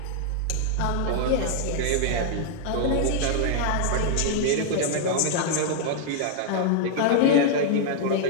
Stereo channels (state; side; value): different; both; correlation -0.01